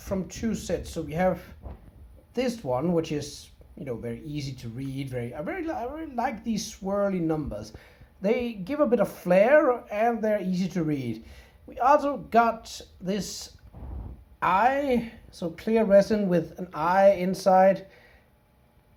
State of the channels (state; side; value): identical; both; correlation 1.00